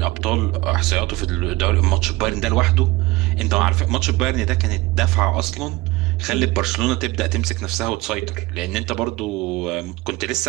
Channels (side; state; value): left; quieter; 20.3 dB